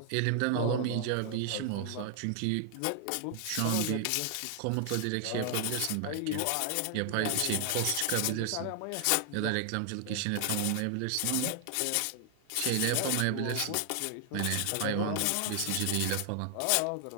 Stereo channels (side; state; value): both; different; correlation 0.00